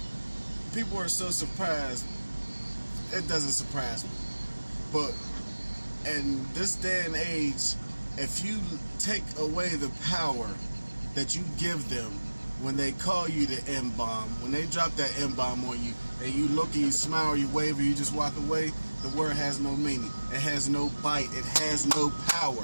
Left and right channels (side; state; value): both; inverted; correlation -1.00